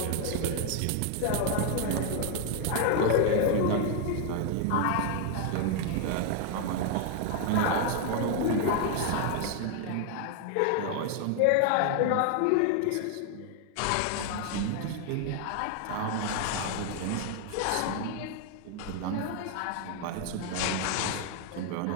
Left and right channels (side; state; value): both; different; correlation 0.00